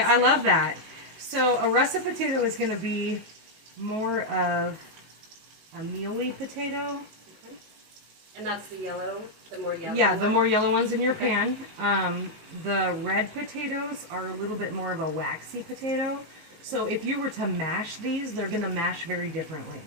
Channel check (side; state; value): left; late; 19 ms